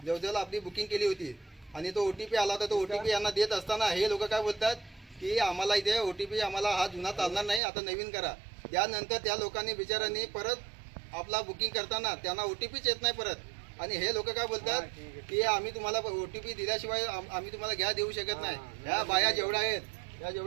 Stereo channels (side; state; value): left; drops out; at 7.6 s